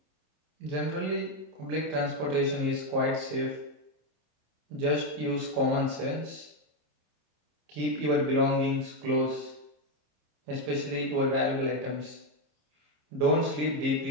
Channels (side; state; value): left; late; 26 ms